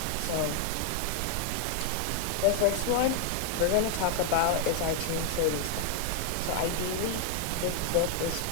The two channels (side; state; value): both; different; correlation 0.00